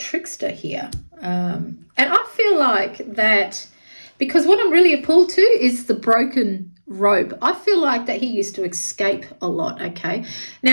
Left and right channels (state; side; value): inverted; both; correlation -1.00